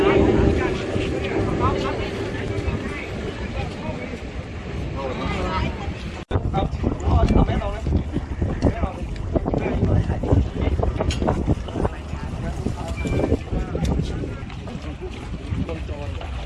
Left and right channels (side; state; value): both; identical; correlation 1.00